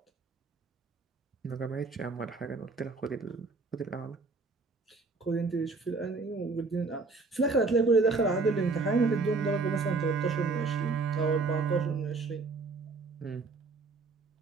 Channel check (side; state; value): left; quieter; 4.0 dB